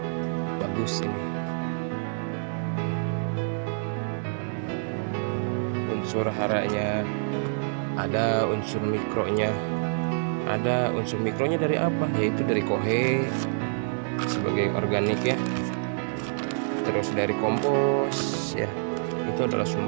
bagus ini. Unsur haranya ada, unsur mikronya ada. Unsur mikronya dari apa? Yaitu dari kohe sebagai organik ya, terus dari kompos ya, itu adalah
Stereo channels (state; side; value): silent; left; digital silence